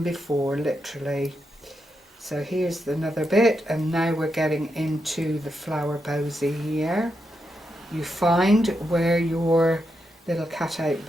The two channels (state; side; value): normal; both; correlation 0.84